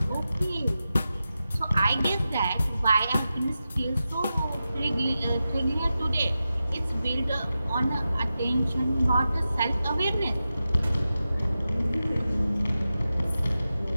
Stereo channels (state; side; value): inverted; both; correlation -0.92